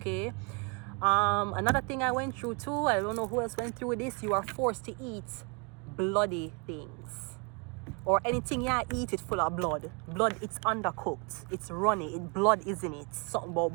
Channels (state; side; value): quieter; left; 32.7 dB